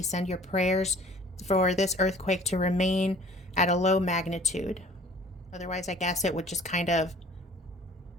Send your prayers for this earthquake to remain at a low magnitude. Otherwise, I guess it would just kind of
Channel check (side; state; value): both; normal; correlation 0.51